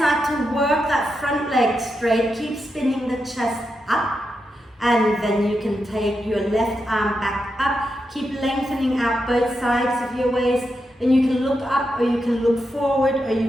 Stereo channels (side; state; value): both; normal; correlation 0.86